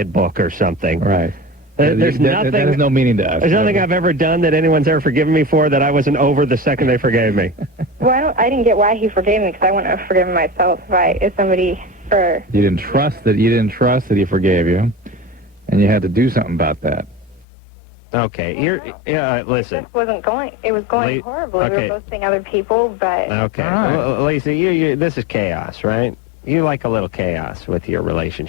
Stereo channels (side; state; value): right; drops out; at 17.4 s